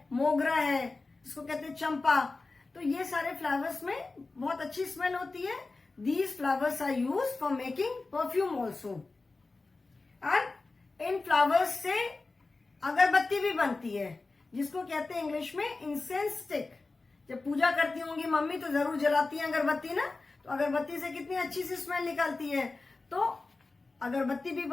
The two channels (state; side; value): quieter; right; 3.6 dB